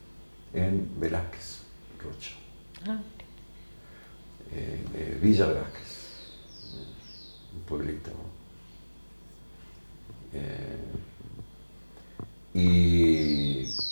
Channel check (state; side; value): inverted; both; correlation -1.00